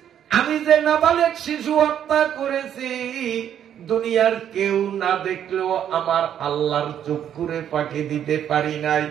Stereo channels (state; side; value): quieter; left; 9.7 dB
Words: আমি যে নাবালেগ শিশু হত্যা করেছি, দুনিয়ার কেউ না দেখলেও আমার আল্লাহর চক্ষুরে ফাঁকি দিতে পারি নাই।